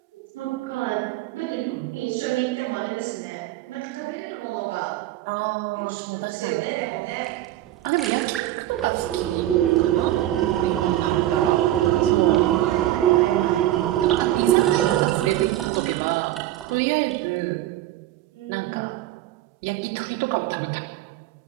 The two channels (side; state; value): left; quieter; 14.3 dB